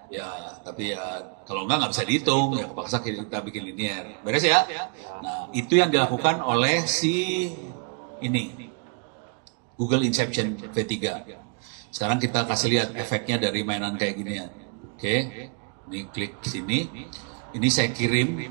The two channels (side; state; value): left; quieter; 37.3 dB